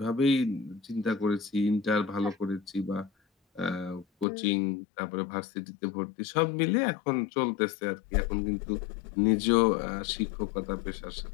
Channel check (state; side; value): drops out; right; at 4.2 s